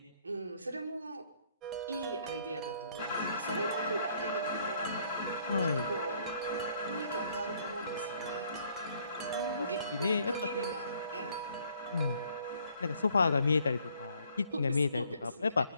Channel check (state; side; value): inverted; both; correlation -0.64